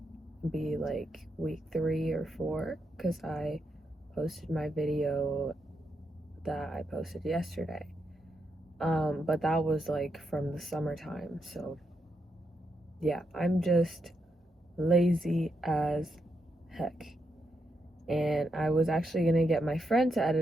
be like week 3 or 4 because I posted my video that I posted yesterday. But that was like from the summertime. So, yeah, I'm just lazy as heck. And I was actually gonna get my friend to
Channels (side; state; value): both; normal; correlation 0.82